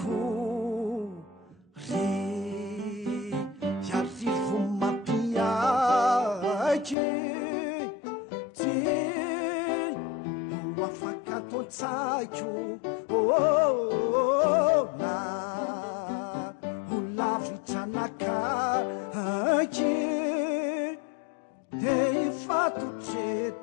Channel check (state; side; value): drops out; right; at 7.0 s